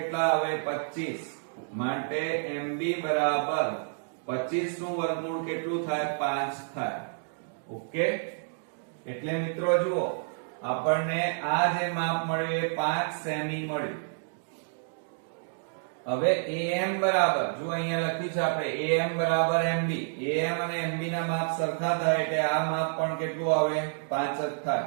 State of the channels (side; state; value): left; silent; digital silence